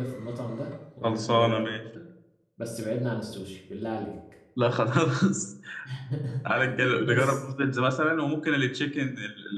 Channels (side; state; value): both; identical; correlation 1.00